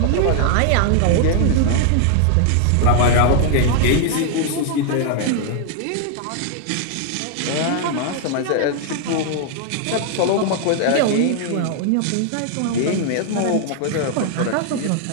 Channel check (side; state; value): both; different; correlation 0.00